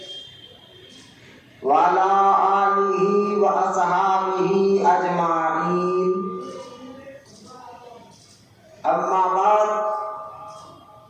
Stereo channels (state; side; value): identical; both; correlation 1.00